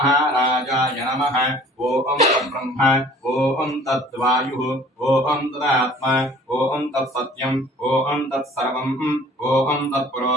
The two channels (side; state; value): both; normal; correlation 0.51